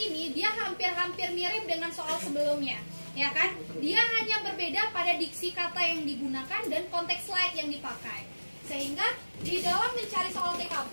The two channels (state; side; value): inverted; both; correlation -1.00